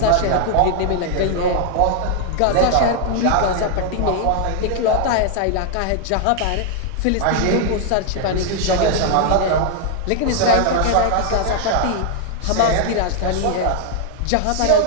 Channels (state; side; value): different; both; correlation 0.00